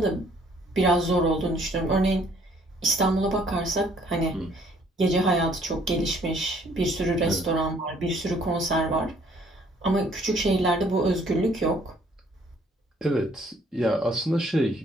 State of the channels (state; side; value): normal; both; correlation 0.62